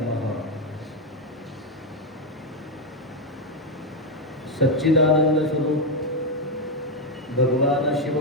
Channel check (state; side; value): normal; both; correlation 0.04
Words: सच्चिदानंद स्वरूप भगवान